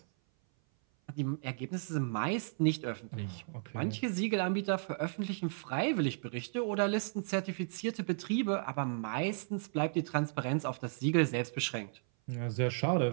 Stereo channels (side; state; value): left; silent; 55 dB below the other